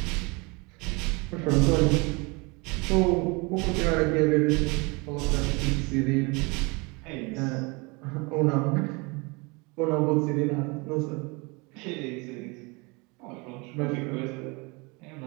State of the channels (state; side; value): quieter; left; 28.0 dB